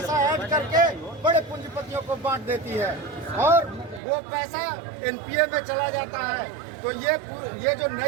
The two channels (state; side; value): drops out; left; at 4.0 s